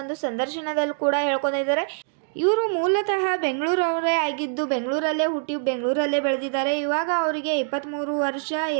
ಸಂದರ್ಶನದಲ್ಲಿ ಕೂಡ ಹೇಳ್ಕೊಂಡಿದ್ದಾರೆ. ಇವರು ಮೂಲತಃ ಬೆಂಗಳೂರವರೇ ಆಗಿದ್ದು, ಬೆಂಗಳೂರಲ್ಲೇ ಹುಟ್ಟಿ ಬೆಂಗಳೂರಲ್ಲೇ ಬೆಳೆದಿದ್ದಾರೆ. ಇವಾಗ ಅವರಿಗೆ 23 ವರ್ಷ.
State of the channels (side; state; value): left; silent; digital silence